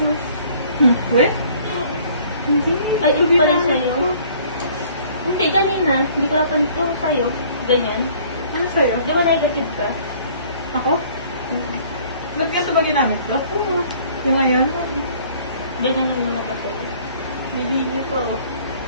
no? We? Hindi. Ay, ito pa rin sa'yo. Hindi, kanina. Hindi ko napan ito sa'yo. Ganyan. Ano sa'yo? Di ba negative ka? Ako? Nagkita ba ginamit ko? Oo. Yung ngayon? Ganyan yung mga ba sa'yo? Hindi niyo to.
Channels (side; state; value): both; inverted; correlation -0.56